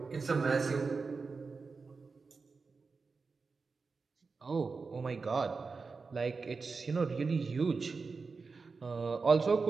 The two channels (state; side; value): quieter; left; 4.5 dB